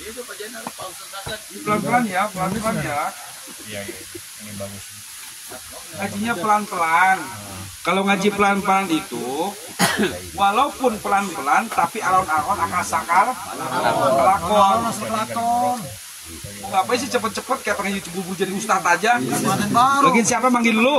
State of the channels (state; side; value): identical; both; correlation 1.00